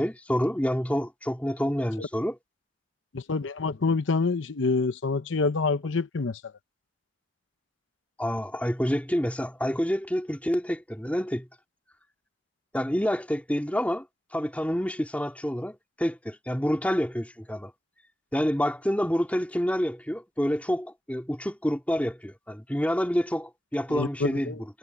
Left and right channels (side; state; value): both; normal; correlation 0.80